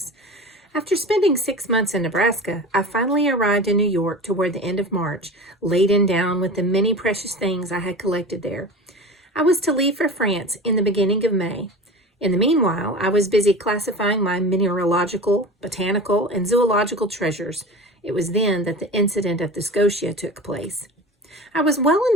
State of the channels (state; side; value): normal; both; correlation 0.33